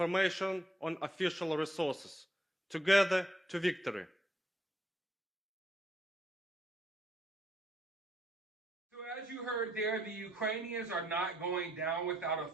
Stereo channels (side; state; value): both; normal; correlation 0.74